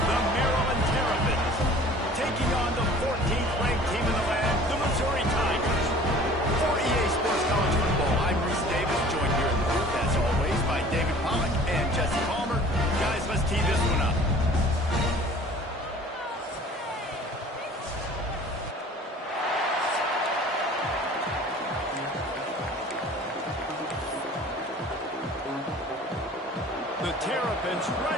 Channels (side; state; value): both; normal; correlation 0.47